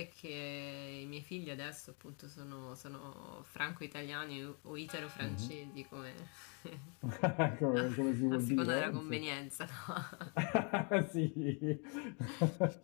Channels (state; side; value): quieter; right; 36.8 dB